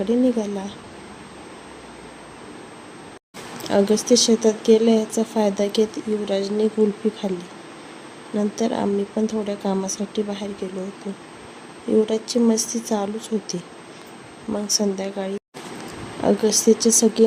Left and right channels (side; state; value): both; identical; correlation 1.00